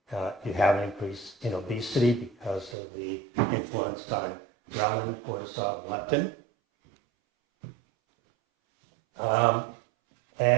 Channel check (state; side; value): drops out; left; at 2.8 s